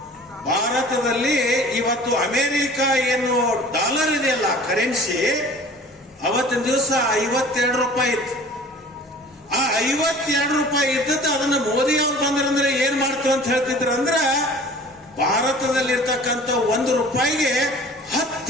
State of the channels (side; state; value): both; normal; correlation 0.46